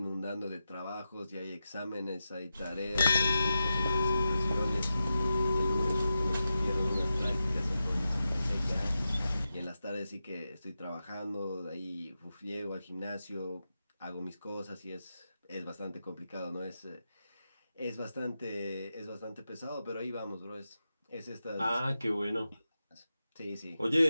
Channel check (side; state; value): both; inverted; correlation -0.90